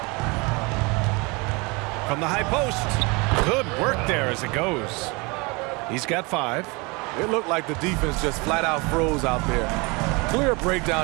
From the high post. Good work there as it goes. He's got 5. It looked like the defense just flat out froze out there. Clear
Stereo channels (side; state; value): left; quieter; 27.3 dB